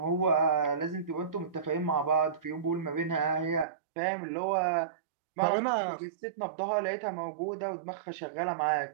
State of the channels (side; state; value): left; drops out; at 3.7 s